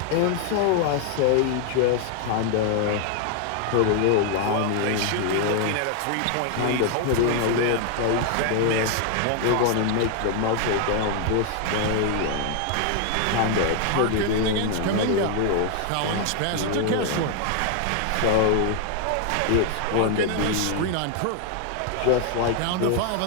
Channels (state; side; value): different; both; correlation 0.00